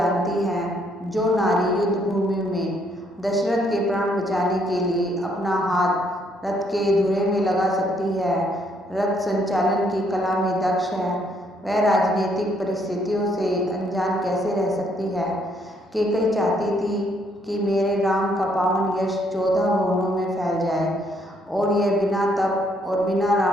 हैं, जो नारी युद्ध भूमि में दशरथ के प्राण बचाने के लिए अपना हाथ रथ के धुरे में लगा सकती है, रथ संचालन की कला में दक्ष है, वह राजनीतिक परिस्थितियों से अनजान कैसे रह सकती है। कैकई चाहती थी कि मेरे राम का पावन यश 14 भुवनों में फैल जाए, और यह बिना तप और बिना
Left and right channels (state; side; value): normal; both; correlation 0.70